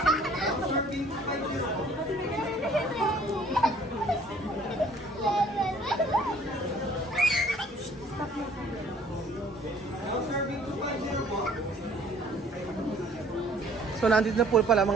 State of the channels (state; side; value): normal; both; correlation 0.56